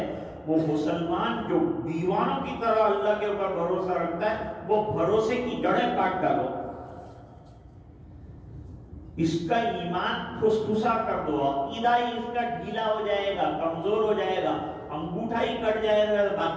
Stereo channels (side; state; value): both; identical; correlation 1.00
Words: وہ مسلمان جو دیوانوں کی طرح اللہ کے اوپر بھروسہ رکھتا ہے، وہ بھروسے کی جڑیں کاٹ ڈالو، اس کا ایمان پھسپھسا کر دو، عقیدہ ہی اس کا ڈھیلا ہو جائے گا، کمزور ہو جائے گا، انگوٹھا ہی کٹ جائے گا،